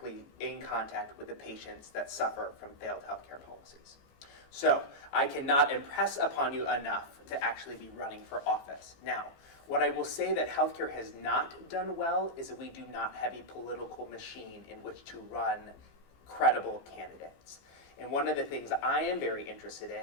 in contact with the patients that suffer from failed healthcare policies. So I cannot impress upon you enough to actually be running for office. Now, what I will say that healthcare has not done well is that we do not have a political machine in which to run credible candidates. And one of the things I am very interested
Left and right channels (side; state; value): right; late; 15 ms